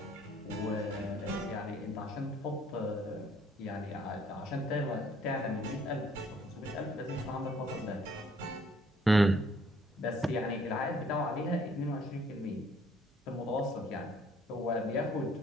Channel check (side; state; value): both; normal; correlation 0.62